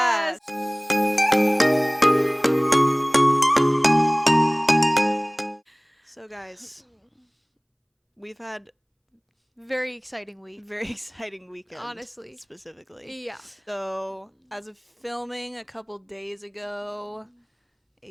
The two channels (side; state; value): both; identical; correlation 1.00